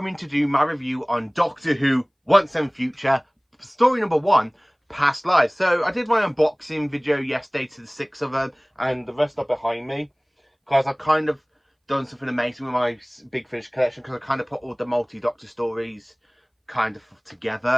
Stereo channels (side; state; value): both; identical; correlation 1.00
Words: to do my review on Doctor Who Once and Future, story number 1, Past Lives. So, I did my unboxing video yesterday to the 6 of them, and the rest are behind me, because I've kind of done something amazing with my Big Finish collection, because I kind of put all the multi-Doctor stories kind of